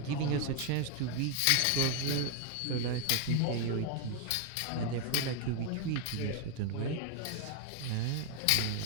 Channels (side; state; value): both; different; correlation 0.01